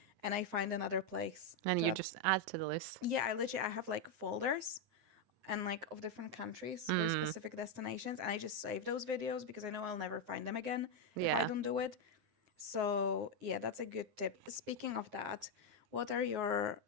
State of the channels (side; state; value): left; late; 9.6 ms